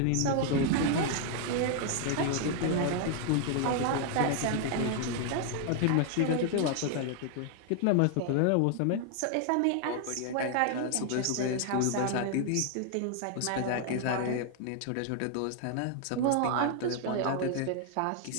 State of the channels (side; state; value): both; different; correlation 0.00